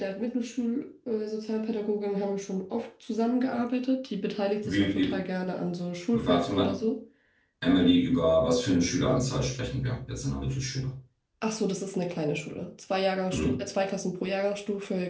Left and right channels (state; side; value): identical; both; correlation 1.00